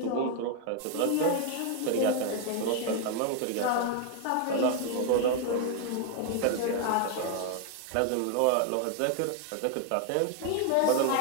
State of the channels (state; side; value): different; both; correlation 0.00